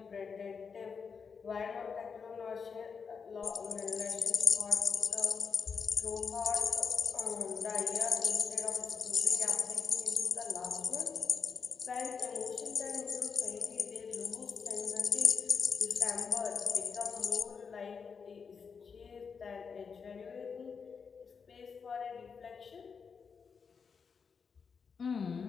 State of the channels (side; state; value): right; quieter; 5.9 dB